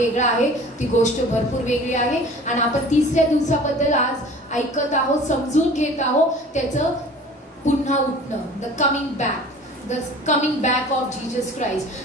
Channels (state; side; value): normal; both; correlation 0.44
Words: आहे, ती गोष्ट भरपूर वेगळी आहे. आणि आपण तिसऱ्या दिवसाबद्दल आज ऐकत आहोत, समजून घेत आहोत त्याचं पुन्हा उठणं, the coming back of Jesus Christ.